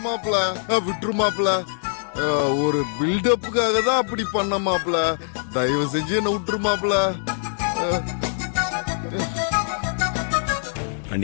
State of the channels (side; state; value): right; silent; 63 dB below the other